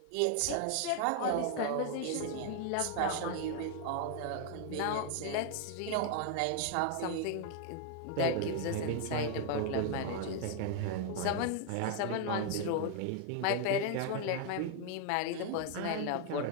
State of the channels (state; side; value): different; both; correlation 0.00